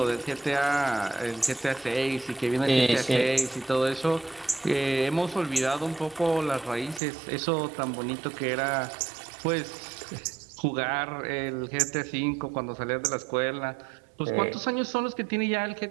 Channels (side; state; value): left; drops out; at 7.0 s